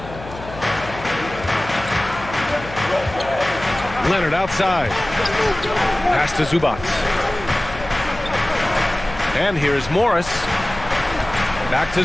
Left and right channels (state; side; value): noise; left; hum, 14 dB below the sound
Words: Leonard outside. Pass to Zubac. And here's Morris. Back to